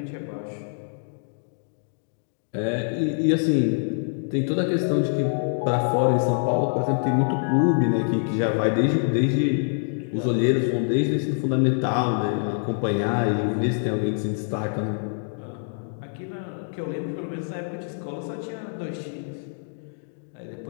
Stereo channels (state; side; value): silent; right; digital silence